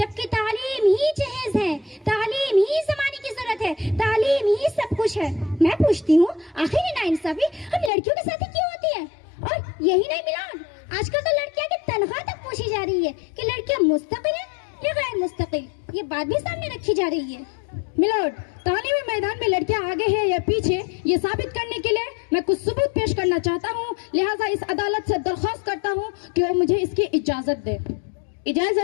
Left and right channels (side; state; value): right; drops out; at 7.9 s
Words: तालीम ही जहेज है, तालीम ही जमाने की जरूरत है, तालीम ही सब कुछ है। मैं पूछती हूँ, आखिर ये नाइंसाफी हम लड़कियों के साथ ही क्यों होती है? और यही नहीं मिलान, आजकल तो लड़कियां की तनख्वाह तक पूछी जा रही है कि लड़कियां मुस्तकिल है या गैर मुस्तकिल, ये बात भी सामने रखी जा रही है। मिलोड, तालीमी मैदान में लड़कियां आगे है या पीछे, ये साबित करने के लिए मैं कुछ सबूत पेश करना चाहता हूँ। लिहाजा इस अदालत से दरख्वास्त करता हूँ कि वो मुझे इसकी इजाजत दे।